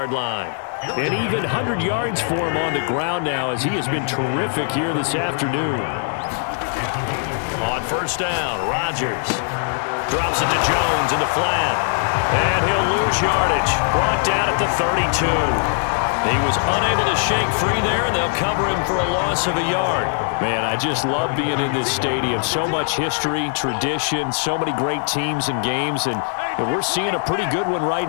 line. An even 100 yards for him on the ground now, as he has been terrific here this afternoon. On first down, Rodgers drops it to Jones in the flat. And he'll lose yardage. Brought down at the 32. He was unable to shake free there, and they'll cover him for a loss of a yard. Man, I just love being in this stadium. So much history, tradition, so many great teams and games, and we're seeing a pretty good one right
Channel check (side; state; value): right; silent; digital silence